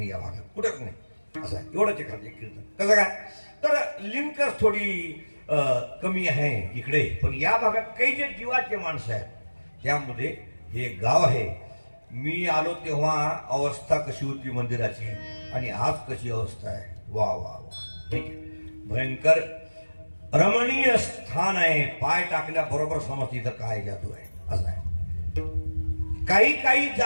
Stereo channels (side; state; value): both; inverted; correlation -1.00